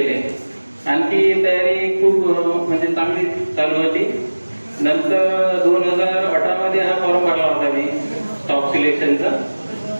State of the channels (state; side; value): inverted; both; correlation -1.00